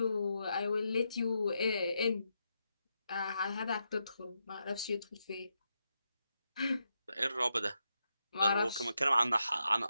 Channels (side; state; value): both; inverted; correlation -0.84